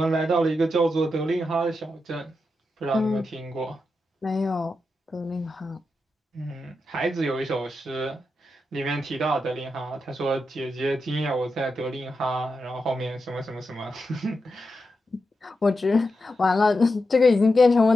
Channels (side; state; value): both; normal; correlation 0.88